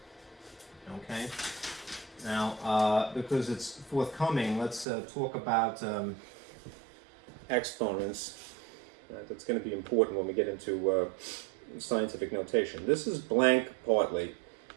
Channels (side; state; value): left; drops out; at 4.9 s